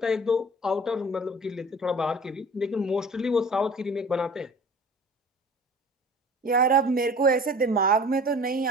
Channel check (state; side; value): normal; both; correlation 0.44